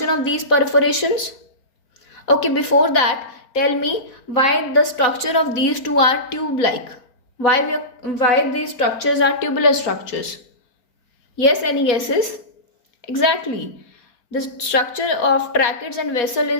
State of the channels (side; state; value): right; late; 4.4 ms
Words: of these perforations? Okay, before that, tell me why the structure of these two are tube-like. Why these structures are tubular structures? Yes, any guesses? Exactly. The structure of tracheids and vessel